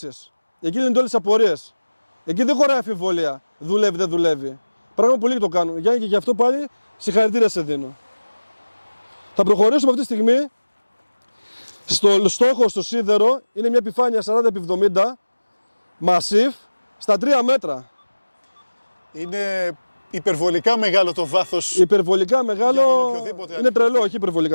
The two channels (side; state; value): both; inverted; correlation -1.00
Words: Εκεί είναι όλες τις απορίες. Εκεί δεν χωράει αμφιβολία. Δουλεύει, δεν δουλεύει. Πράγμα που πολλοί το κάνουν. Γιάννη, και γι' αυτό πάλι συγχαρητήρια σε δίνω. Θα προχωρήσουμε αυτή τη στιγμή. Στο στόχο, στο σίδερο, είναι μια επιφάνεια 40x70 Massif στα 3 μέτρα. Είναι υπερβολικά μεγάλο το βάθος. Υπερβολικά μεγάλο. οποιοδήποτε Είναι τρελό, όχι